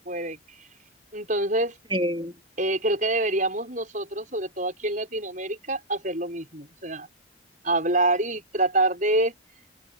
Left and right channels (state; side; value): normal; both; correlation -0.06